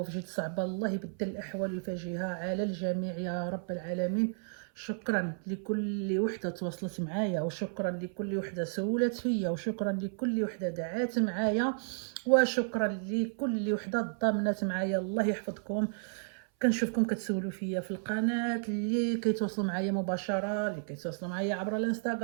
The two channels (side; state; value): left; silent; 56 dB below the other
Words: جد صعبه، الله يبدل الاحوال ويفاجئها على الجميع يا رب العالمين. شكرا لكل وحده تواصلت معايا، وشكرا لكل وحده سولت فيا، وشكرا لكل وحده دعات معايا، وشكرا لكل وحده ضامنت معايا. الله يحفظكم. كنشوفكم كتسولوا فيا في القناه، اللي كيتواصلوا معايا مباشره، اللي كيتواصلوا معايا عبر